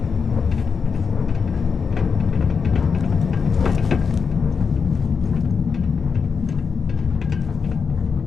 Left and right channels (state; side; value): quieter; right; 5.7 dB